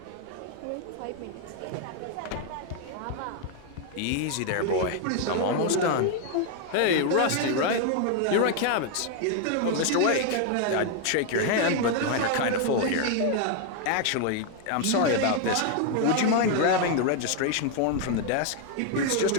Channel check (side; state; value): both; different; correlation 0.00